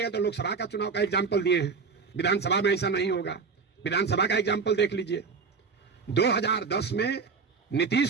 तो लोकसभा का चुनाव का एग्जाम्पल दिए हैं, विधानसभा में ऐसा नहीं होगा। विधानसभा का एग्जाम्पल देख लीजिए। 2010 में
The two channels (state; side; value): quieter; left; 5.2 dB